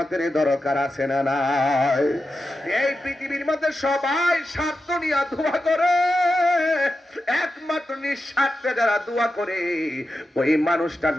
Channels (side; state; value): both; normal; correlation 0.90